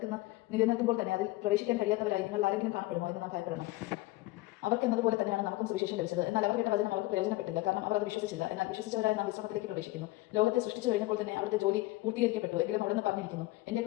നിലനിൽക്കുമ്പോൾ തന്നെ അതിൽ പ്രവേശിക്കാൻ കഴിയാത്തവരായി നിങ്ങൾ ആരെങ്കിലും കാണപ്പെടുമോ എന്ന് നാം ഭയപ്പെടണം. അവർക്കെന്നതുപോലെ തന്നെയാണ് നമുക്കും സുവിശേഷം ലഭിച്ചത്. എന്നാൽ അവർ കേട്ട വചനം അവർക്ക് പ്രയോജനപ്പെട്ടില്ല, കാരണം അവർ അത് വിശ്വസിച്ചില്ല. എന്നാൽ വിശ്വസിച്ചവരായി നാം വിശ്രമത്തിലേക്ക് പ്രവേശിക്കുന്നു. ലോകത്തെ സൃഷ്ടിച്ചു കഴിഞ്ഞപ്പോൾ തന്നെ അവരുടെ ജോലി പൂർത്തീകരിക്കപ്പെട്ടു. എങ്കിലും അവിടെ നിന്ന് പറഞ്ഞിരിക്കുന്നു, എന്റെ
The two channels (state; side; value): quieter; right; 19.2 dB